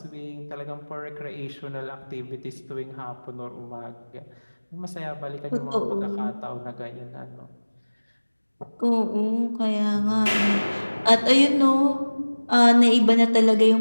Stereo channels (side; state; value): both; inverted; correlation -1.00